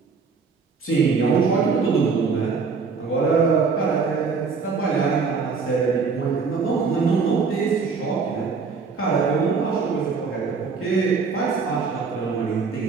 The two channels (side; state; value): left; quieter; 5.0 dB